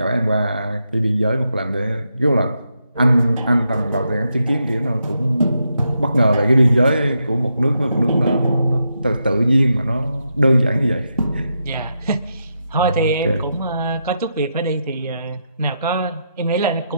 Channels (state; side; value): inverted; both; correlation -0.83